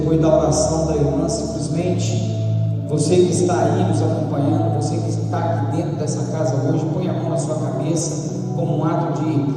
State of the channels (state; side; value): identical; both; correlation 1.00